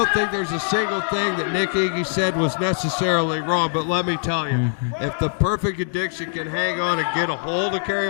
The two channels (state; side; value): silent; right; digital silence